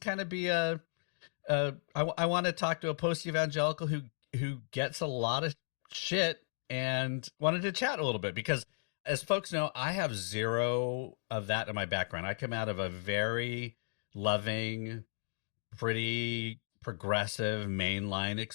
of I want to talk to a post-evangelical who gets a lot of shit and wanted to chat a little bit because, as folks know, I have zero of that in my background. I come out of a very loving, pretty progressive mainline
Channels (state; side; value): silent; right; digital silence